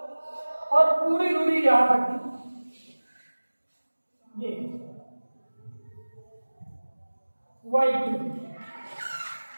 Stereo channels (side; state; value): both; inverted; correlation -1.00